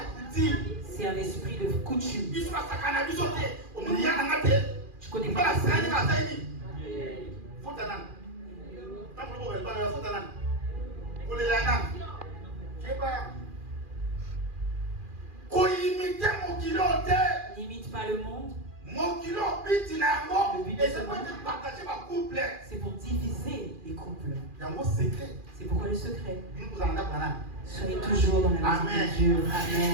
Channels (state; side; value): late; left; 2.4 ms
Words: c'est un esprit de coutume. Tu connais pas ça. N'imite pas le monde. Le but de ce monde, c'est pour diviser les couples. C'est pourquoi le secret. Soyez toujours dans la maison de Dieu.